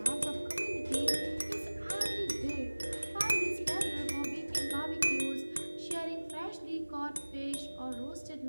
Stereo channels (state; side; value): inverted; both; correlation -1.00